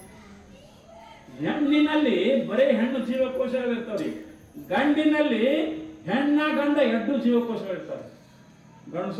ಹೆಣ್ಣಿನಲ್ಲಿ ಬರೀ ಹೆಣ್ಣು ಜೀವಕೋಶಗಳು ಇರ್ತಾವ್ರಿ. ಗಂಡಿನಲ್ಲಿ ಹೆಣ್ಣ ಗಂಡ ಎರಡು ಜೀವಕೋಶಗಳು ಇರ್ತಾವೆ.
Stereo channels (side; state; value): both; identical; correlation 1.00